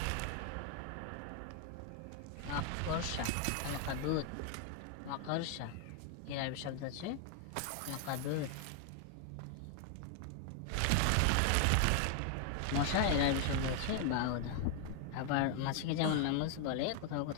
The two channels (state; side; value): different; both; correlation 0.00